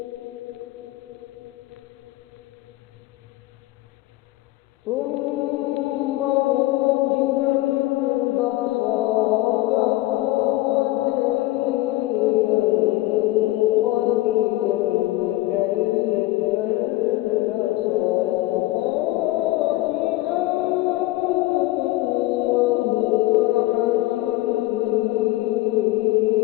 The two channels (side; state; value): right; quieter; 18.3 dB